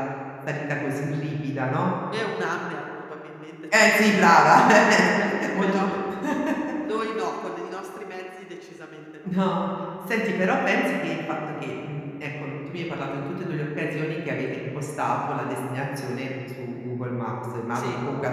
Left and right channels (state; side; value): identical; both; correlation 1.00